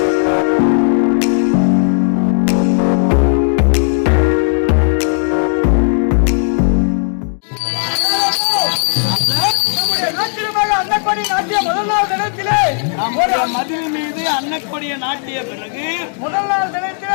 மதில் மீது அன்னக்கொடிய நாட்டிய பிறகு முதல் நாள்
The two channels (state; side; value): silent; right; 64 dB below the other